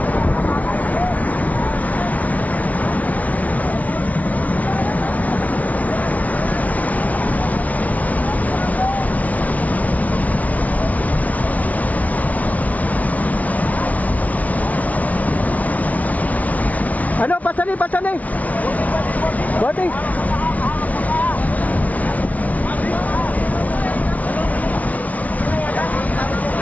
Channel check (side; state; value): right; late; 0.070 ms